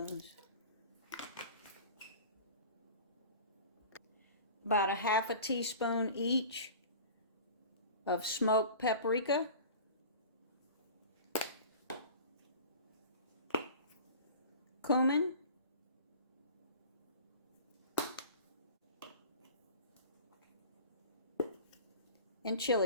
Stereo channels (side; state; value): both; inverted; correlation -0.39